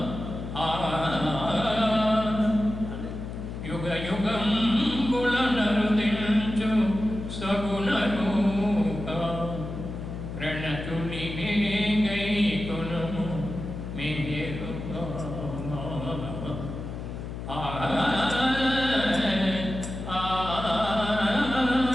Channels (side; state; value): left; noise; hum, 8 dB below the sound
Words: యుగ యుగంబుల నరుదించు సగుణ రూప ప్రణతుని గైకొను మెహరుబా